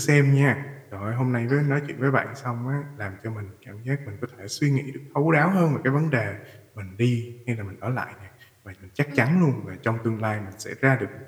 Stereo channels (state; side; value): identical; both; correlation 1.00